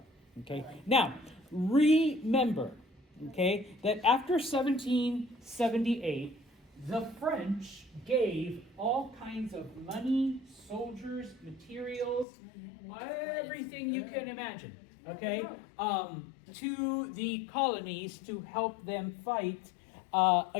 okay. Now, remember, okay, that after 1778, the French gave all kinds of money, soldiers, materials, everything you can imagine, okay, to the colonies to help them fight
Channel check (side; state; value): right; drops out; at 12.2 s